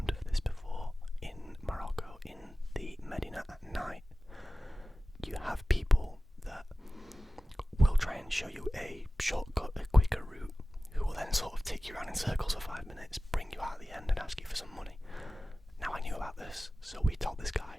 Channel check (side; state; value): both; normal; correlation 0.96